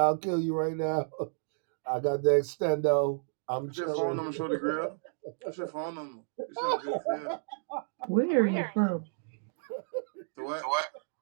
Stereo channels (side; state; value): left; silent; digital silence